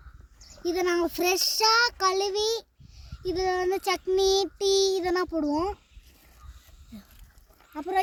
இதை நாங்கள் ஃப்ரெஷ்ஷாக கழுவி இதில் வந்து சட்னி டீ இதெல்லாம் போடுவோம்.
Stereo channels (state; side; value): identical; both; correlation 1.00